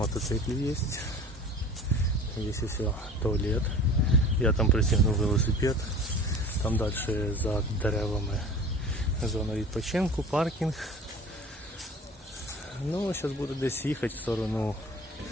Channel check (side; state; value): both; normal; correlation 0.41